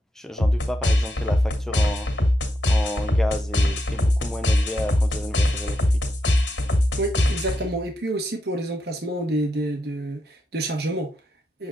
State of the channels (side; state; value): both; normal; correlation 0.83